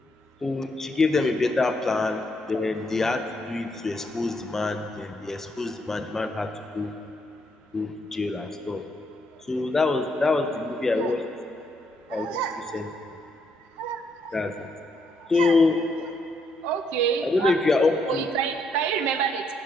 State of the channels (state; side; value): normal; both; correlation 0.75